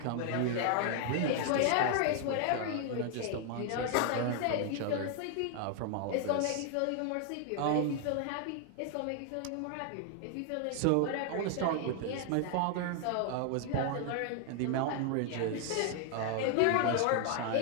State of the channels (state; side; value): different; both; correlation 0.00